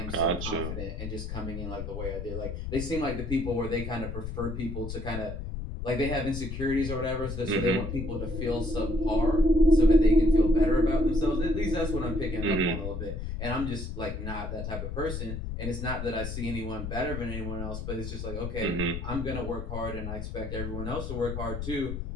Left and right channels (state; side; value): noise; left; rumble, 5 dB below the sound